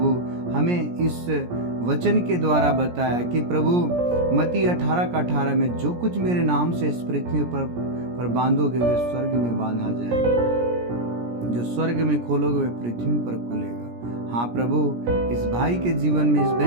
हमें इस वचन के द्वारा बताया कि प्रभु मत्ती 18:18 में जो कुछ मेरे नाम से इस पृथ्वी पर बांधोगे वे स्वर्ग में बांधा जाएगा, जो स्वर्ग में खोलोगे वे पृथ्वी पर खुलेगा। हाँ प्रभु, इस भाई के जीवन में, इस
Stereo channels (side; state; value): left; late; 17 ms